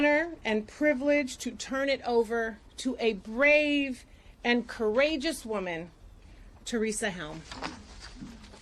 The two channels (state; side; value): identical; both; correlation 1.00